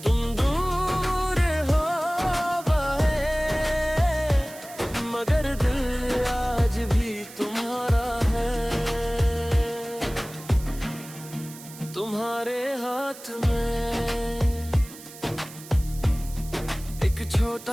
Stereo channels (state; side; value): noise; right; hiss, 17 dB below the sound